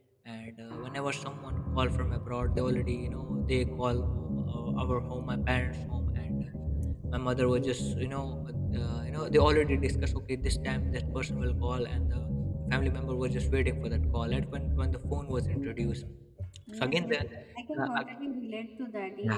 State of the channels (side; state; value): both; identical; correlation 1.00